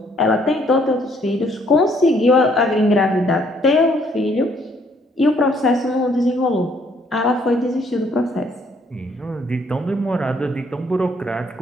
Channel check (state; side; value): normal; both; correlation 0.65